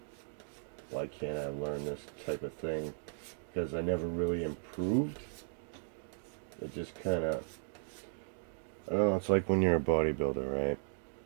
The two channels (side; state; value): left; silent; digital silence